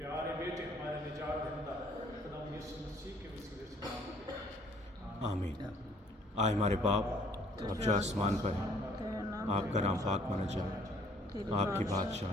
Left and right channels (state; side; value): normal; both; correlation 0.60